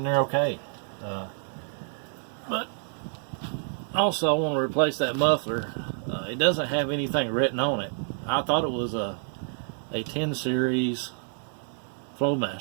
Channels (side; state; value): left; silent; 59 dB below the other